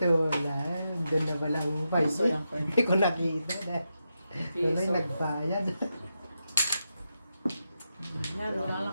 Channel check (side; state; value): both; inverted; correlation -0.87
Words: wala. Doon na wala ang Piso 5. lang po. Hindi ko nakita. Doon ay Piso. nagbayad. Yan, Wala